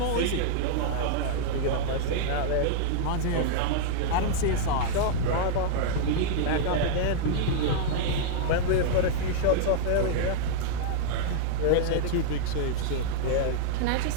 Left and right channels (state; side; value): different; both; correlation -0.01